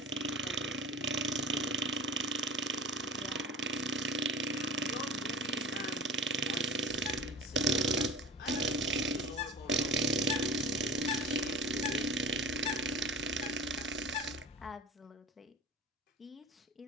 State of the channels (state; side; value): normal; both; correlation 0.36